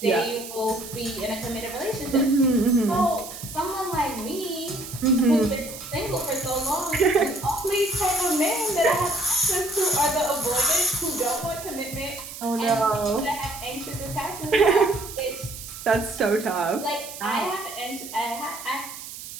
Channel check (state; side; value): noise; right; hiss, 12 dB below the sound